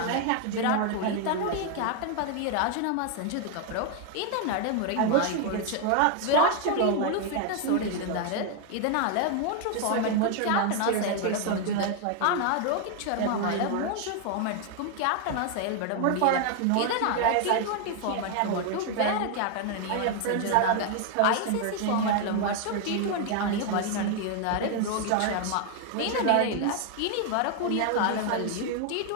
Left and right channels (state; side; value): different; both; correlation 0.01